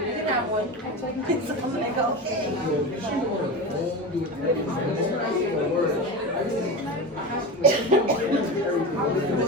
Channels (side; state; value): both; normal; correlation 0.24